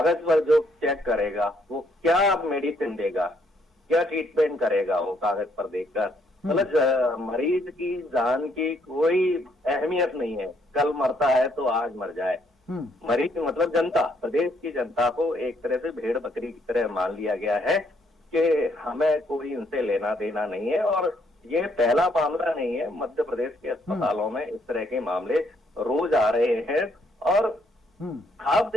पर जो चेक करेगा वो क्या मेडिसिन देगा, क्या ट्रीटमेंट करेगा वो कागज पर देखकर? मतलब मरीज की जान की कोई अहमियत नहीं है, कल मरता है तो आज मर जाए। मरीज मतलब जनता, प्रदेश की जनता को एक तरह से भेड़ बकरी की तरह मान लिया गया है कि हमें कोई इनसे लेना देना नहीं है। और ये पहला मामला नहीं है, मध्य प्रदेश के अस्पतालों में इस तरह के मामले रोज आ रहे हैं। और आप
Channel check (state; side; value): normal; both; correlation 0.70